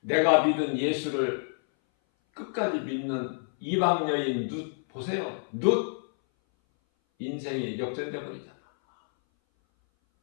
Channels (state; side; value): silent; right; 58 dB below the other